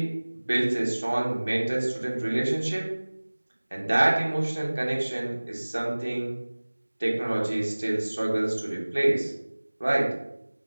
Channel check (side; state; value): both; inverted; correlation -1.00